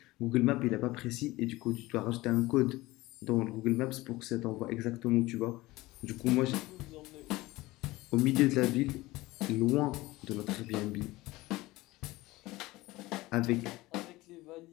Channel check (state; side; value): quieter; right; 19.4 dB